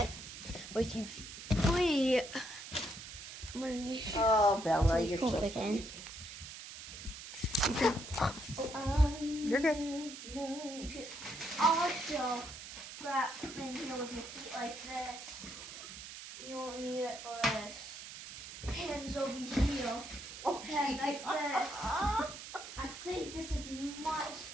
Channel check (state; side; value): noise; right; hiss, 11 dB below the sound